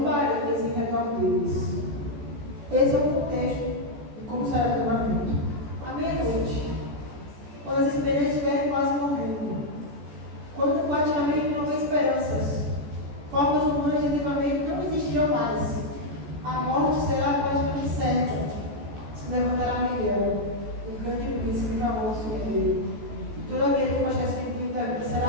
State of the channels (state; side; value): late; left; 14 ms